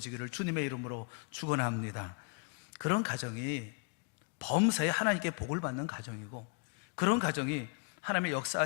주님의 이름으로 축원합니다. 그런 가정이 범사에 하나님께 복을 받는 가정이고, 그런 가정이 하나님의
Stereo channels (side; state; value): right; quieter; 34.9 dB